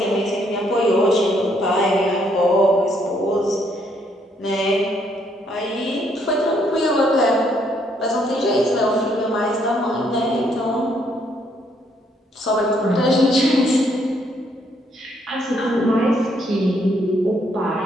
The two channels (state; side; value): normal; both; correlation 0.71